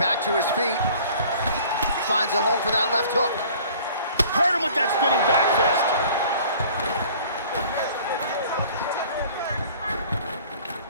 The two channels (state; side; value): inverted; both; correlation -0.50